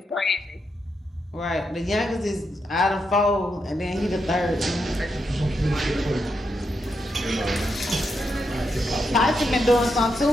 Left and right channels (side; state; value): both; normal; correlation 0.83